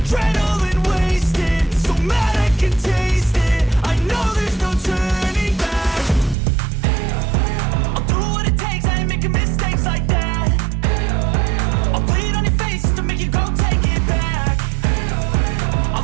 wasted, so mad I can taste it. I know there's no turning back. I'll do what it takes, I ain't making mistakes like that. I'll bleed on your face to make you go take it back. I'll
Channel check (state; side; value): drops out; left; at 6.4 s